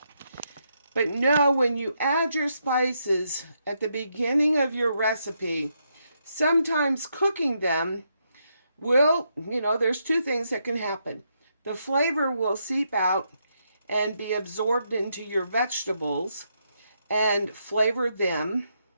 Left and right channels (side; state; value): both; inverted; correlation -0.79